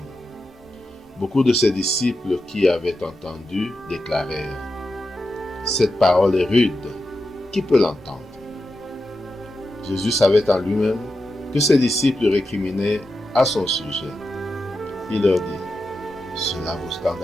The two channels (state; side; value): normal; both; correlation 0.89